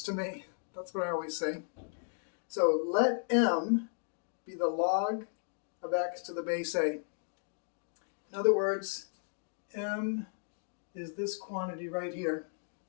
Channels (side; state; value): right; silent; digital silence